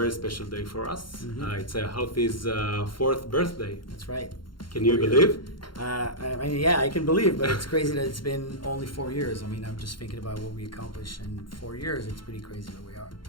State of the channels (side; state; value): right; late; 0.73 ms